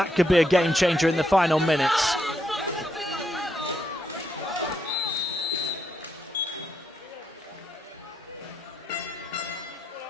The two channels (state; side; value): normal; both; correlation 0.79